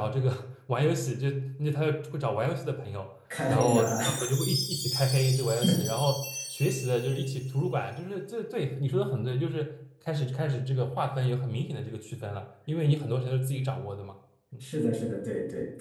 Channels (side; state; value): both; identical; correlation 1.00